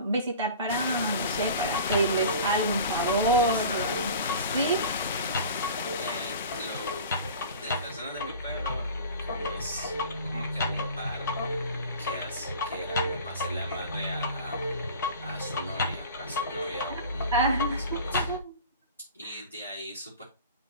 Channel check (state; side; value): inverted; both; correlation -0.40